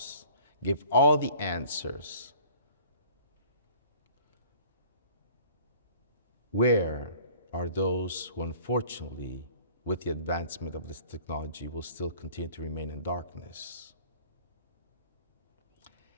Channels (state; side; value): inverted; both; correlation -0.49